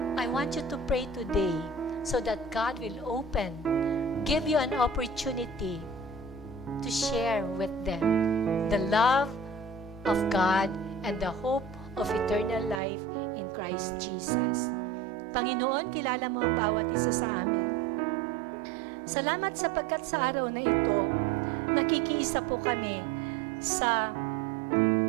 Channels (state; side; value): drops out; left; at 12.8 s